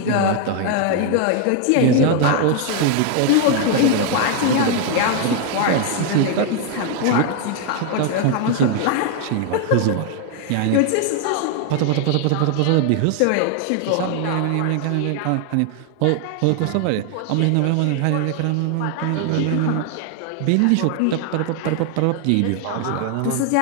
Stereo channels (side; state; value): both; different; correlation 0.00